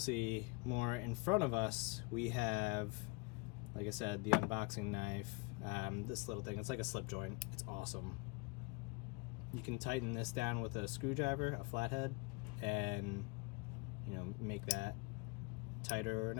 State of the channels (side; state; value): right; quieter; 28.6 dB